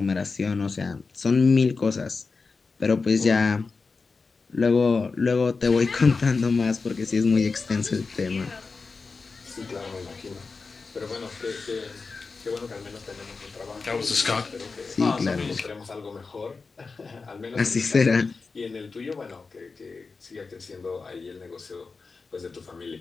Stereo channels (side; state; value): right; quieter; 4.4 dB